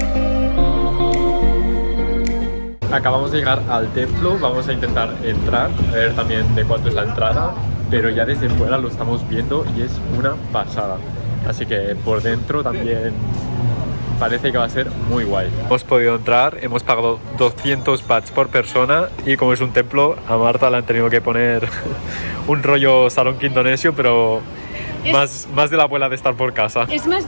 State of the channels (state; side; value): inverted; both; correlation -1.00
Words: Acabamos de llegar al templo, vamos a intentar entrar, a ver también de cuánto es la entrada, pero ya desde fuera lo estamos viendo y es una pasada. Así que por dentro también parece que va a ser muy guay. Hemos podido entrar, hemos pagado 200 bahts por persona y como es un templo, a Marta le han tenido que poner un rollo salón indonesio, pero más de la abuela de estar por casa. Es